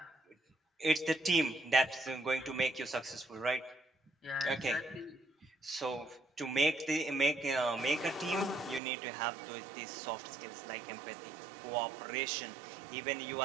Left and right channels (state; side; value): drops out; left; at 8.8 s